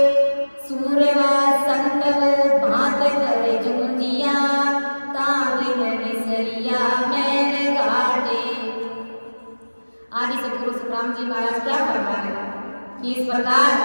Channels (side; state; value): both; inverted; correlation -1.00